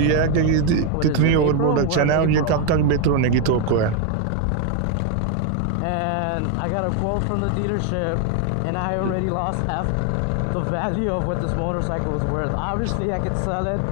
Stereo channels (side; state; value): both; different; correlation 0.01